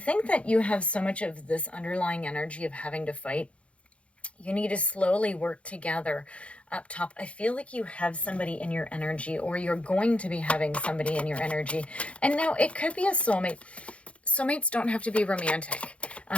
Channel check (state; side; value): late; right; 0.062 ms